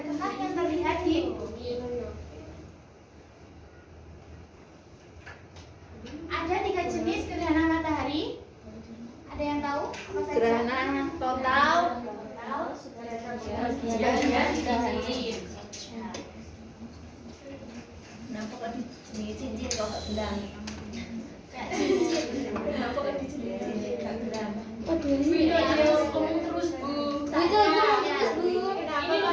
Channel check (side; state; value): both; identical; correlation 1.00